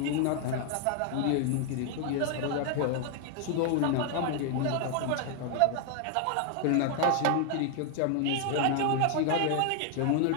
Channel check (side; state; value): both; different; correlation 0.00